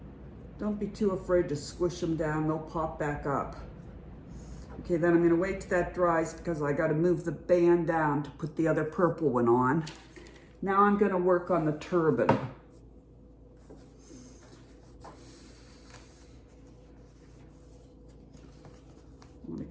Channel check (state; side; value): identical; both; correlation 1.00